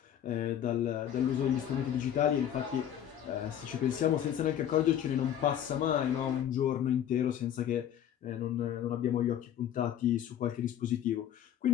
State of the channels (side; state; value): right; quieter; 10.2 dB